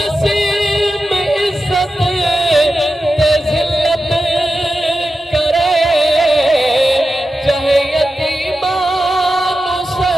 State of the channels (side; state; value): both; normal; correlation 0.91